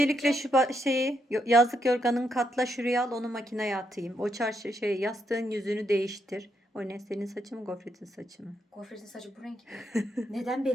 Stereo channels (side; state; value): both; normal; correlation 0.79